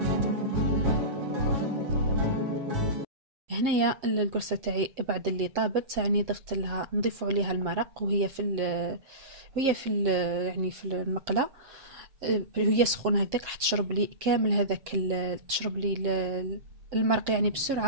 هنايا القرصه تاعي بعد اللي طابت يعني ضفت لها، نضيف عليها المرق وهي في يعني في المقله، هي سخونه هكذاك راح تشرب لي كامل هذاك تشرب لي المرق يعني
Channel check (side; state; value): left; late; 7.4 ms